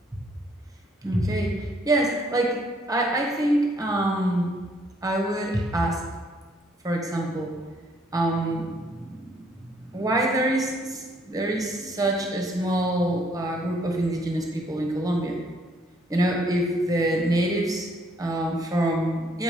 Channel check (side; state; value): both; normal; correlation 0.67